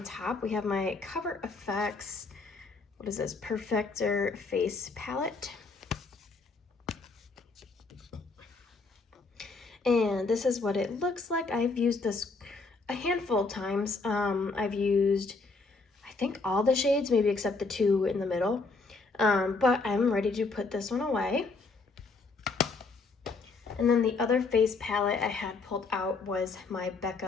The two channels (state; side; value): quieter; right; 3.9 dB